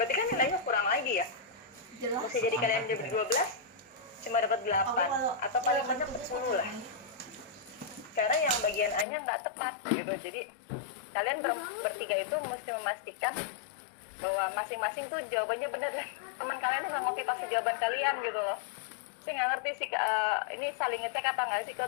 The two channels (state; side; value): drops out; right; at 9.1 s